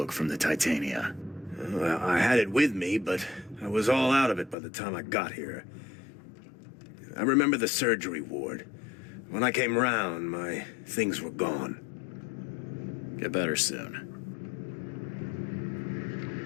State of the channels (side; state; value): right; drops out; at 4.5 s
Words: from the Titania? Well, I had it with me, but I was all out of it by the time I got here. I remember the surgery ward. When I came round, my things were gone. Get better soon.